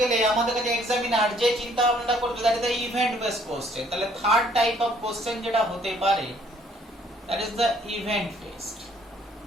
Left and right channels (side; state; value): both; normal; correlation 0.62